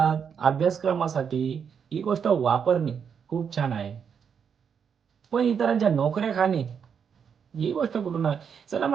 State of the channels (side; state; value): left; quieter; 7.1 dB